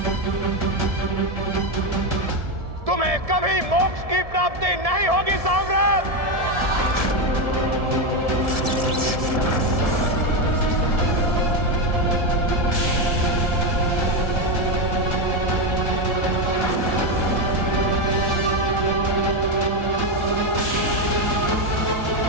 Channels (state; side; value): late; left; 1.7 ms